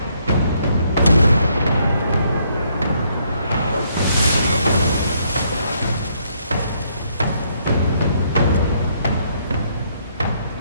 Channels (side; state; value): both; inverted; correlation -0.71